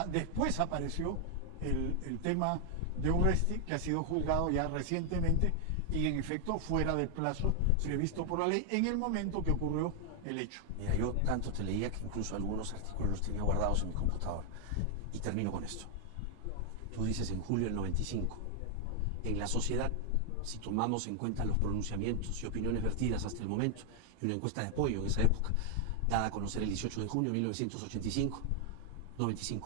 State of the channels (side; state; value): both; different; correlation 0.00